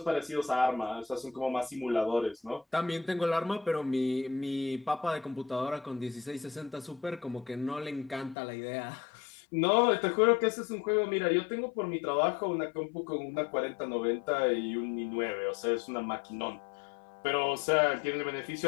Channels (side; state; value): right; drops out; at 8.3 s